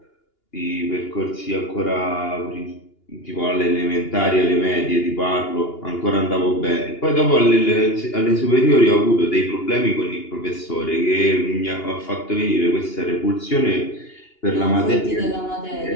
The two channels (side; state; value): right; late; 2.8 ms